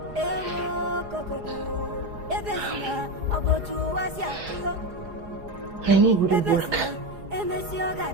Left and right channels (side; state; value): left; late; 4.9 ms